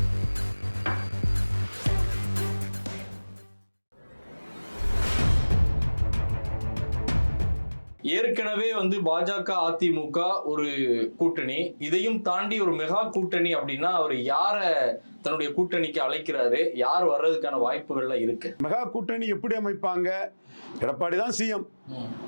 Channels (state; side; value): inverted; both; correlation -1.00